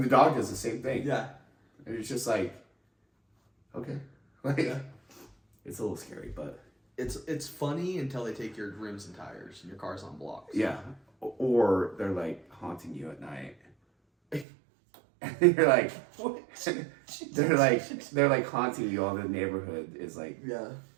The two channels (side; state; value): left; drops out; at 14.5 s